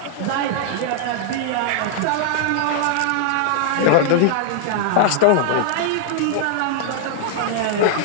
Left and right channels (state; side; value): different; both; correlation -0.01